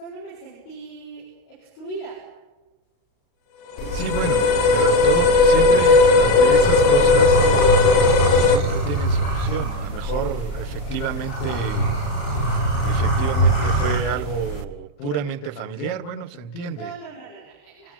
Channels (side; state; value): right; late; 36 ms